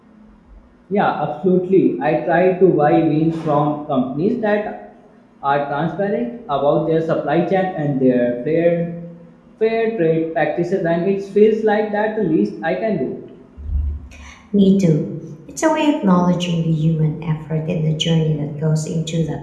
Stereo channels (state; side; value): identical; both; correlation 1.00